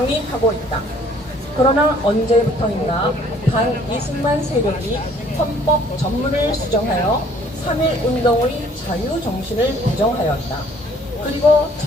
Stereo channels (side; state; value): both; normal; correlation 0.58